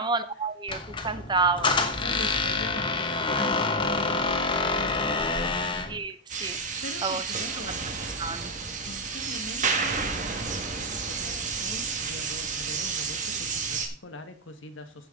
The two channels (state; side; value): normal; both; correlation 0.00